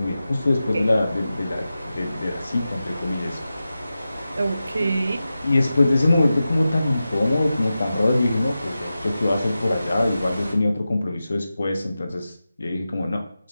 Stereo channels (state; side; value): inverted; both; correlation -0.93